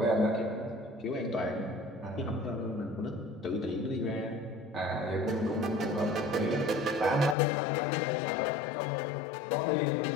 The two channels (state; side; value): drops out; right; at 7.4 s